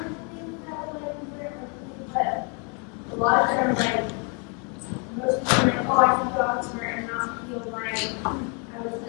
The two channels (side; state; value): right; quieter; 36.6 dB